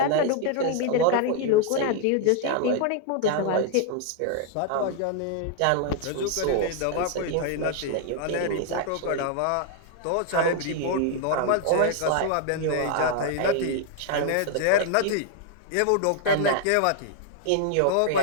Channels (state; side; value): different; both; correlation 0.00